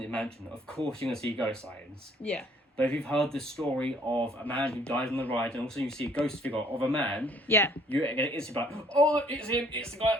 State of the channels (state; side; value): normal; both; correlation 0.60